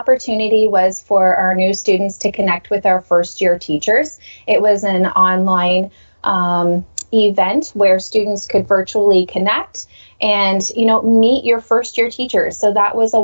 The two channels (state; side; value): inverted; both; correlation -1.00